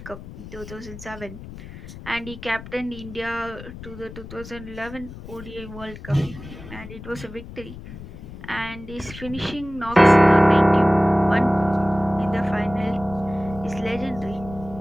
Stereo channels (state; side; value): noise; left; rumble, 14 dB below the sound